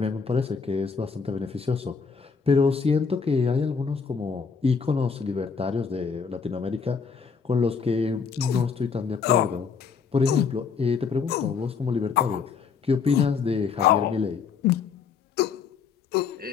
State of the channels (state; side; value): quieter; right; 5.8 dB